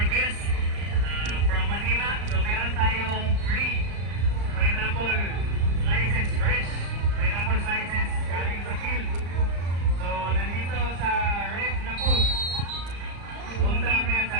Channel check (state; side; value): late; left; 34 ms